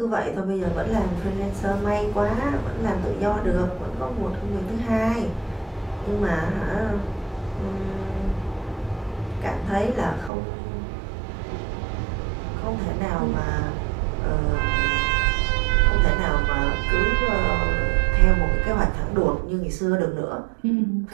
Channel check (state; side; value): drops out; left; at 10.3 s